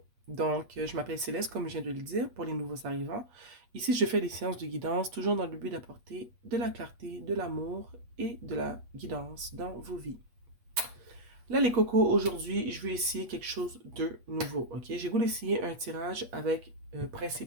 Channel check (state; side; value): late; left; 8.3 ms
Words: Je m'appelle Céleste, comme je viens de le dire, pour les nouveaux arrivants. Ici, je fais des séances de guidance, toujours dans le but d'apporter de la clarté, de l'amour et de la guidance dans vos vies. Là, les cocos, aujourd'hui, je vais essayer quelque chose de nouveau, ok? J'ai voulu essayer un tirage avec